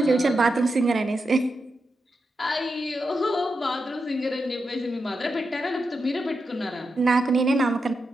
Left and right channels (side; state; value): both; normal; correlation 0.87